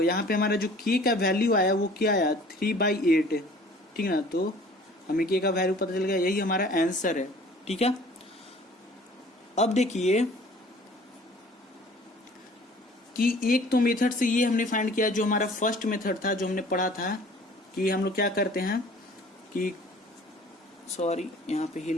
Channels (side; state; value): both; normal; correlation 0.50